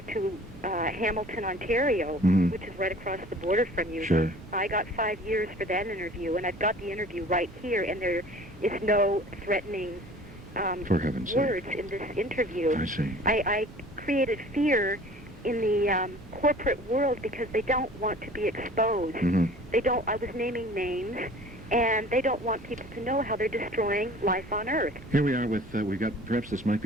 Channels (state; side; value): normal; both; correlation 0.47